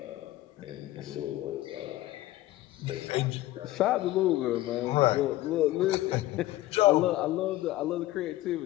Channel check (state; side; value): quieter; right; 16.4 dB